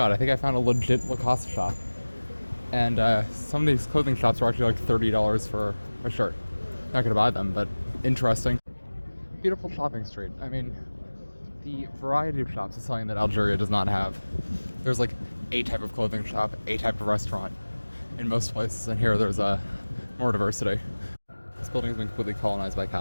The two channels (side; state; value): both; inverted; correlation -1.00